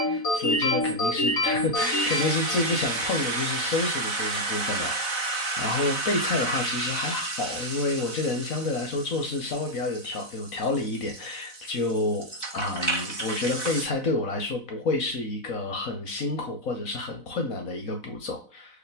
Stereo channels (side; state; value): right; late; 4.0 ms